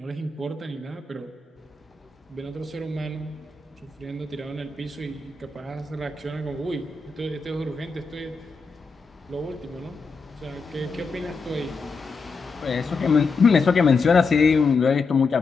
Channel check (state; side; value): quieter; right; 4.3 dB